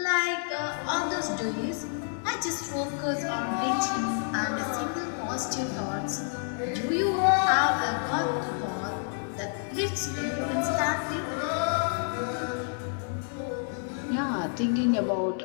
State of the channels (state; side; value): silent; right; 55 dB below the other